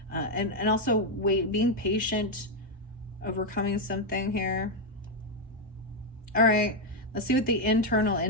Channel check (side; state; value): both; normal; correlation 0.02